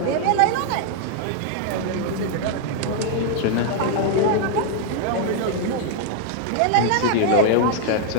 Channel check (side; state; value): both; different; correlation 0.00